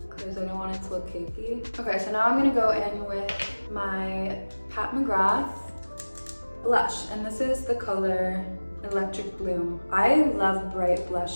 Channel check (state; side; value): inverted; both; correlation -1.00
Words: because I don't want it to look cakey. Okay, so now I'm gonna go in with my Pat McGrath blush, and this is the color Electric Bloom. I love bright